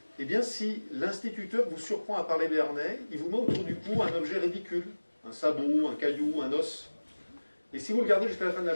Eh bien, si l'instituteur vous surprend à parler béarnais, il vous met autour du cou un objet ridicule, un sabot, un caillou, un os. Et si vous le gardez jusqu'à la fin de la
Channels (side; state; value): both; inverted; correlation -1.00